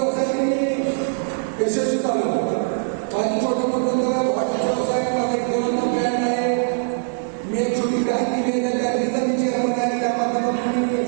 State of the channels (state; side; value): silent; left; 59 dB below the other